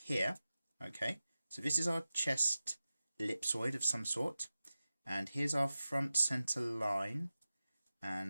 here. Okay, so this is our chest ellipsoid of some sort, and here's our front center line,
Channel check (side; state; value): both; inverted; correlation -0.95